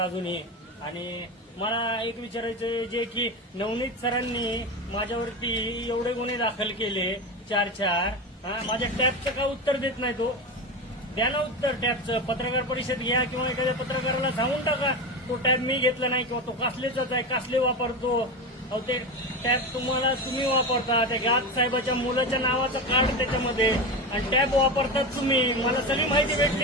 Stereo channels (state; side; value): normal; both; correlation 0.21